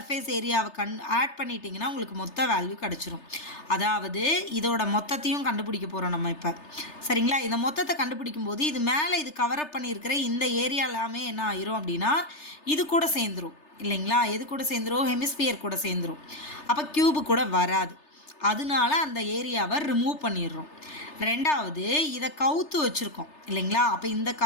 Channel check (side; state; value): right; late; 3.3 ms